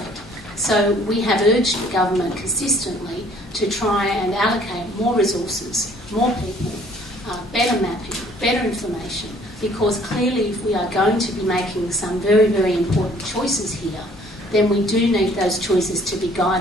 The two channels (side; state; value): both; normal; correlation 0.58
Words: So we have urged the government consistently to try and allocate more resources, more people, better mapping, better information, because clearly if we are going to be making some very, very important choices here, then we do need those choices to be